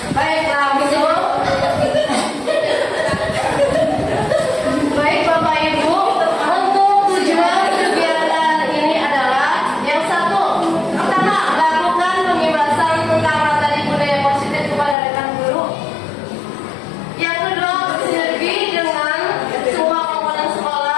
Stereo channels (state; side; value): drops out; right; at 15.0 s